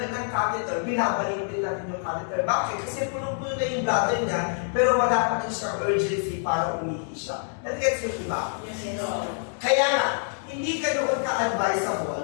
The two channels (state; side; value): silent; right; digital silence